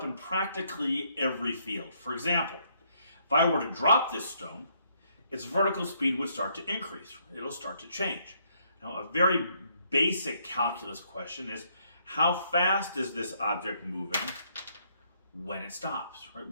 in practically every field. For example, if I were to drop this stone, its vertical speed would start to increase. It'll start to change. Now, a very basic calculus question is, how fast is this object moving when it stops, right?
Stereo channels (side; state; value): both; inverted; correlation -0.71